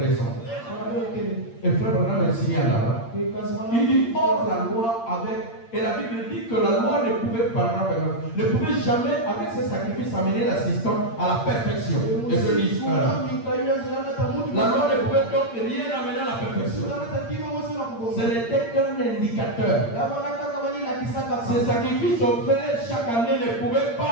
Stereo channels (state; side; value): late; right; 8.7 ms